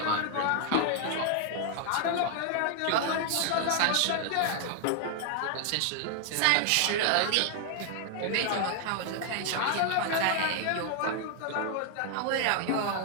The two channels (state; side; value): different; both; correlation 0.00